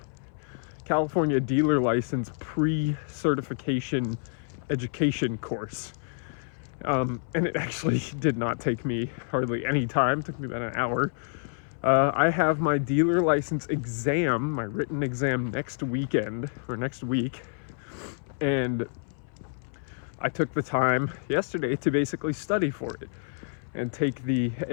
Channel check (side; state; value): right; silent; 59 dB below the other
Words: California dealer license pre-certification education course. And it actually did not take me hardly any time. It took me about an hour. I have my dealer license exam, my written exam next weekend, or next week. And I took the time yesterday to basically study for it and take the